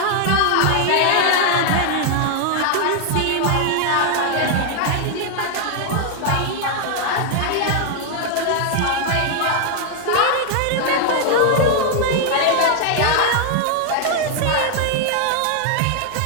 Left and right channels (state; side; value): different; both; correlation 0.00